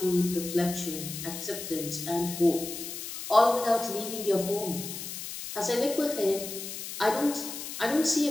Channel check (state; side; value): noise; left; hiss, 8 dB below the sound